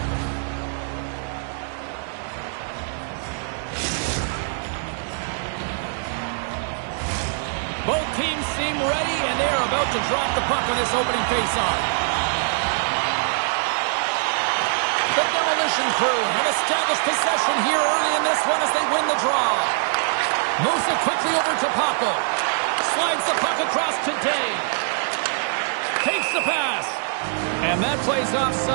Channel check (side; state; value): left; silent; 60 dB below the other